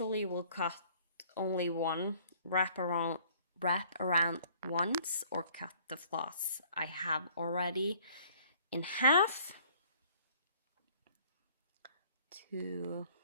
will cut only one, wrap around once, or cut the floss I have already in half to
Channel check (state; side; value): inverted; both; correlation -0.57